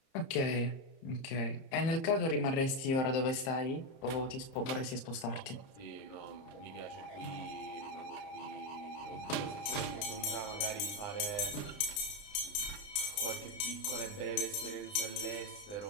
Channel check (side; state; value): right; late; 30 ms